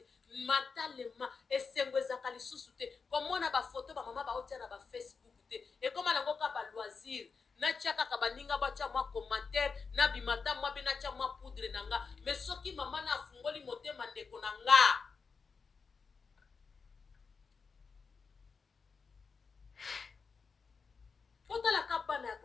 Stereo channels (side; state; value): right; quieter; 5.1 dB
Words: mentalement esengwezaka lisusu te komona ba photo ba mama ba otia na ba Facebook te e koma nango ka ba loisir na tiaka ka baninga ba tia mwa commentaire na bimata mwa bina tia mwa poudre nanga mais soki mama na afungoli motema ndeko nanga otala ka bana ya